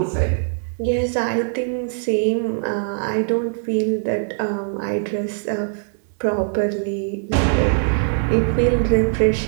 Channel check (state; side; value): silent; left; digital silence